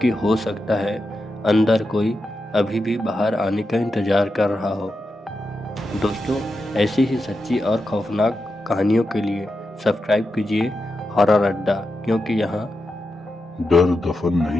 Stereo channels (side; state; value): both; normal; correlation 0.88